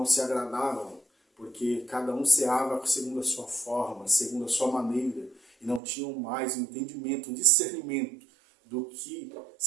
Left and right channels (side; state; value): left; drops out; at 5.8 s